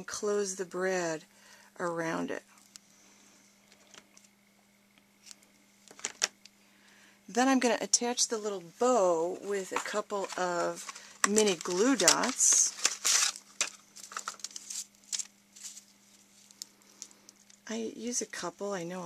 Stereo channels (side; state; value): both; identical; correlation 1.00